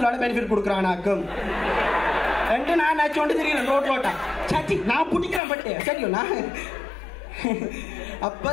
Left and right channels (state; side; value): drops out; right; at 5.4 s